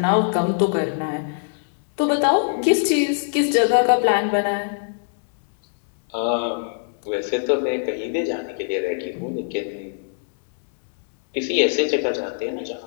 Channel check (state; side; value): silent; right; digital silence